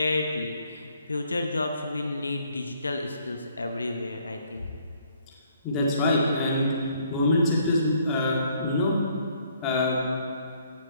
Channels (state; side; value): inverted; both; correlation -0.65